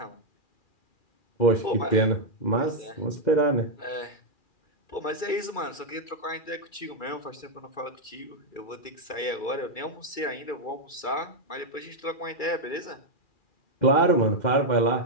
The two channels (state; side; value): late; right; 2.3 ms